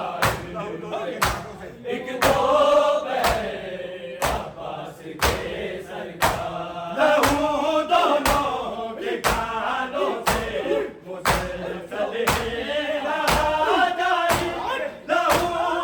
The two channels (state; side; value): identical; both; correlation 1.00